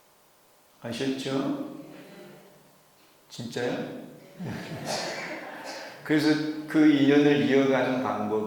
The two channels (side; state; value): both; identical; correlation 1.00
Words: 아셨죠? 진짜요? 그래서 그 인연을 이어가는